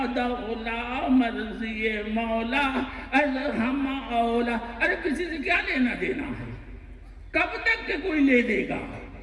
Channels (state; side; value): identical; both; correlation 1.00